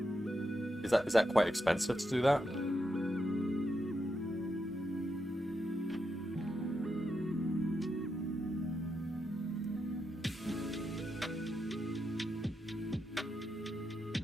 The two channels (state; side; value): normal; both; correlation 0.85